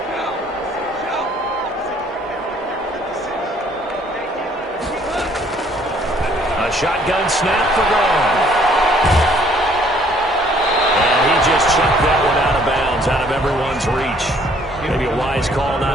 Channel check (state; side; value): normal; both; correlation 0.61